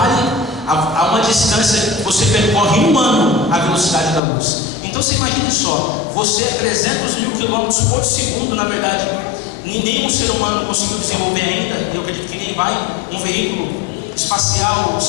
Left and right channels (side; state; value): right; drops out; at 4.2 s